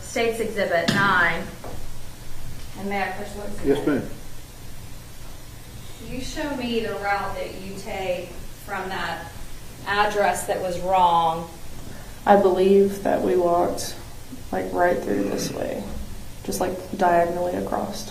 State's Exhibit 9. And may I push what's in Yes, it? ma'am. You show me the route that you take from that address that was wrong. I believe that we walked like right through this way, just like diagonally across.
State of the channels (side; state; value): both; identical; correlation 1.00